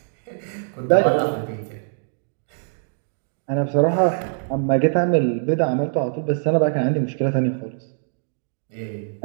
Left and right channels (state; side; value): silent; left; digital silence